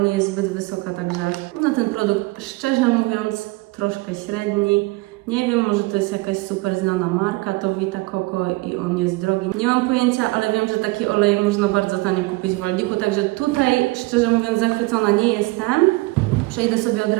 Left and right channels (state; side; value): quieter; left; 23.0 dB